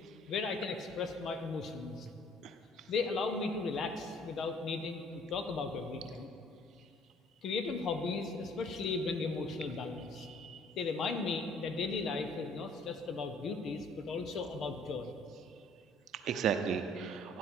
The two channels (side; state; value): both; normal; correlation 0.58